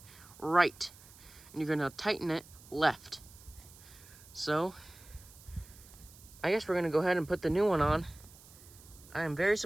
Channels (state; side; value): noise; right; hiss, 21 dB below the sound